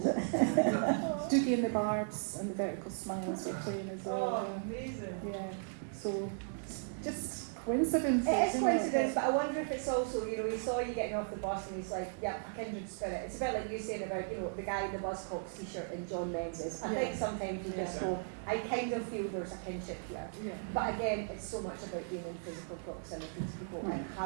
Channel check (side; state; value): left; silent; digital silence